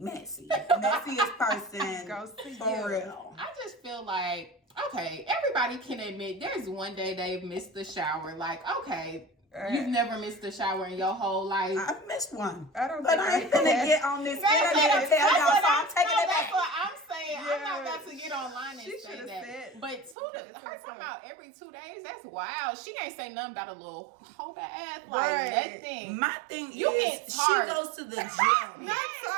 Messiest person Goes to for you. real. I just feel like, okay, everybody can admit there's one day they've missed the shower. Like, okay, you've never missed a shower in your whole life. I've missed one. I don't But think I ain't finna get on this internet and tell y'all, so I'm taking it That's back. what I'm saying. Yeah. I'm not about to get online and She say should've that. said- But her talking about every 2 days, that's wild. She ain't say nothing about a little whole ass, like Right. nothing. My thing You is, get she tired. goes to the gym. Not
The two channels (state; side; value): drops out; left; at 20.2 s